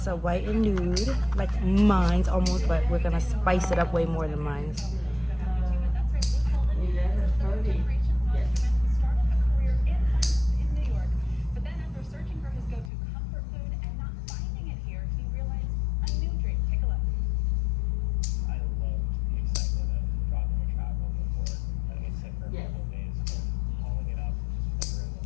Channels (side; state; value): right; drops out; at 12.9 s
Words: A white and nude, like mine's almost, but we're gonna spice it up way more than mine's.